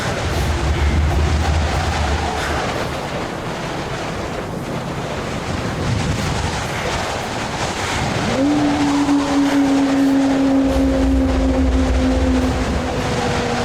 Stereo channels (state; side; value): identical; both; correlation 1.00